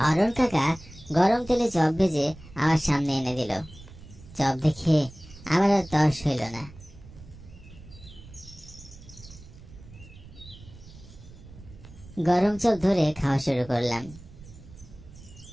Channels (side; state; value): right; noise; rumble, 19 dB below the sound